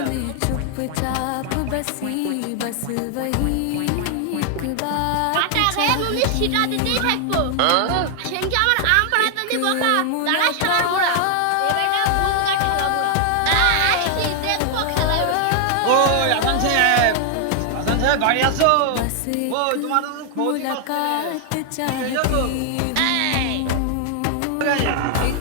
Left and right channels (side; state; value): both; different; correlation 0.00